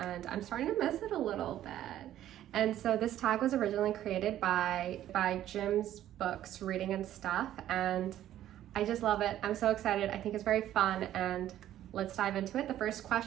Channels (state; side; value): quieter; left; 12.4 dB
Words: I'm starting to miss it a little bit. And so this tag was originally created by Jim's books, Reading and Stuff, and I just love it. I'm so excited. I think it's very fun and let's dive into it. The first